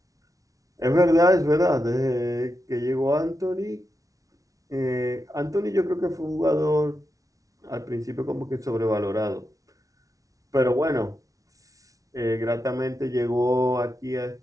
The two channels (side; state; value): left; late; 0.17 ms